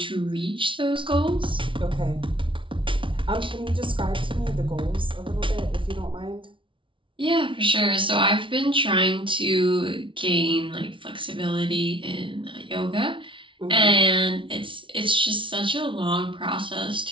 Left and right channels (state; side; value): late; left; 0.25 ms